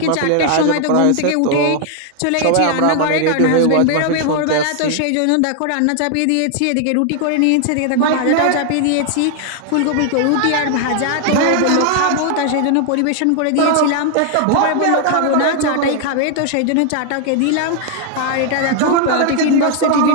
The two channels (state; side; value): different; both; correlation 0.00